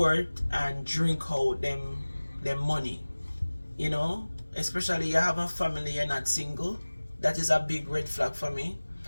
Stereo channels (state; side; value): inverted; both; correlation -1.00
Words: and drink out them money. You know, especially you have a family, you're not single. That is a big red flag for me.